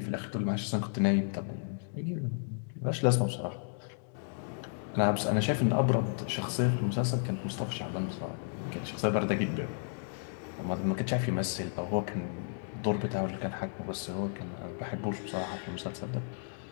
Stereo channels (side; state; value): right; silent; digital silence